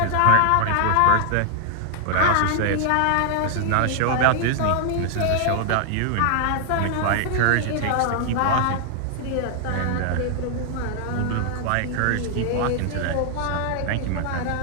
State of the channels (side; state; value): both; different; correlation 0.00